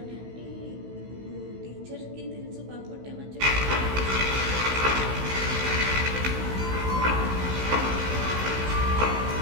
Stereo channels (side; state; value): left; late; 16 ms